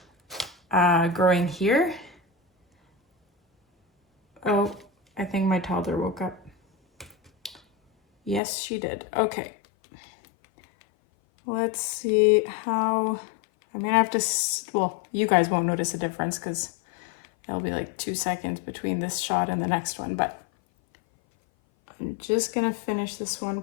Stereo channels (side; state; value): right; drops out; at 8.4 s